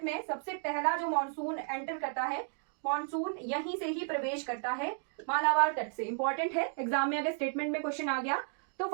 में सबसे पहला जो मॉनसून एंटर करता है, मॉनसून यहीं से ही प्रवेश करता है, मालाबार तट से। इंपॉर्टेंट है, एग्जाम में अगर स्टेटमेंट में क्वेश्चन आ गया तो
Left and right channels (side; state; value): left; silent; 56 dB below the other